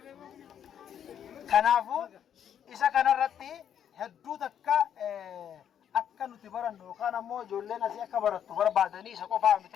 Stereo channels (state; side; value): quieter; right; 9.2 dB